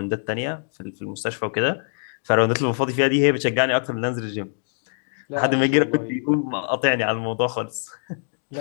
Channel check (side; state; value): right; silent; digital silence